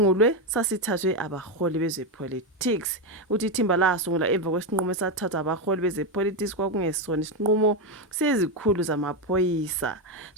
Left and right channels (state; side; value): normal; both; correlation 0.09